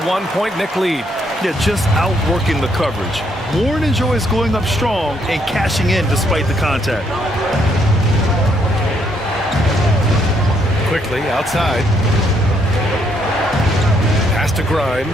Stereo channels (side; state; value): both; normal; correlation 0.72